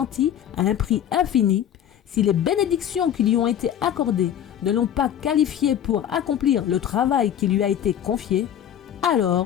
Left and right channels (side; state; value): right; quieter; 10.1 dB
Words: à un prix infini, si les bénédictions qui lui ont été accordées ne l'ont pas qualifiée pour accomplir le travail qui lui a été confié,